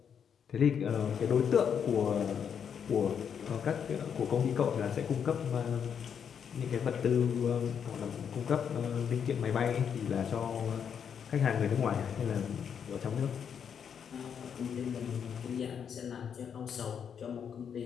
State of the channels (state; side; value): quieter; right; 7.6 dB